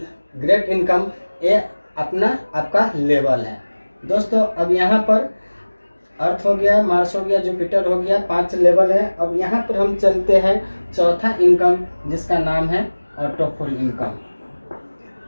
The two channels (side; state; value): both; inverted; correlation -1.00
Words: ग्रेट इनकम, ये अपना आपका लेवल है दोस्तों। अब यहाँ पर अर्थ हो गया, मार्स हो गया, जुपिटर हो गया, 5 लेवल है। अब यहाँ पर हम चलते हैं चौथा इनकम जिसका नाम है auto full income.